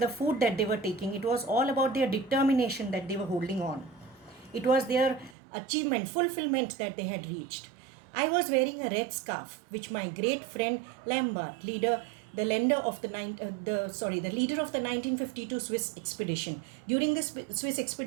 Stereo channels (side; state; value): left; drops out; at 5.4 s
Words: food that they were taking. It was all about their determination that they were holding on. It was their achievement, fulfillment that they had reached. I was wearing a red scarf, which my great friend Lambert, the leader of the 1952 Swiss expedition. During the Swiss